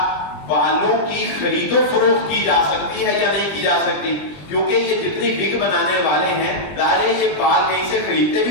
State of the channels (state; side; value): late; right; 20 ms